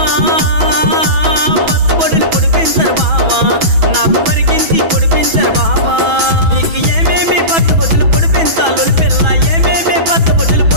పచ్చబొడులు పొడిపించరు బావా నాకు మరికించి పొడిపించరు బావా నీకు ఏమేమి పచ్చబొడులు పొడిపించాలి పిల్ల ఏమేమి పచ్చబొడులు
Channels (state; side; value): late; left; 6.1 ms